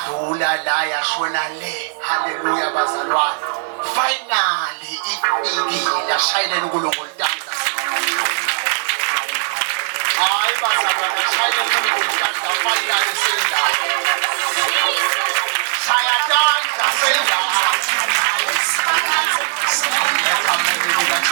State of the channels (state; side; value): silent; left; digital silence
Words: la yashona le. Hallelujah bazalwane. Finally ifikile. Ashayeleni uNkulunkulu tandla. Hayi bazalwane ashayeleni uNkulunkulu tandla. Finally senda. Sayatandla senda.